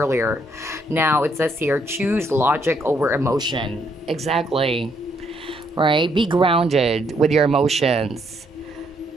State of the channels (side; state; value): both; normal; correlation 0.72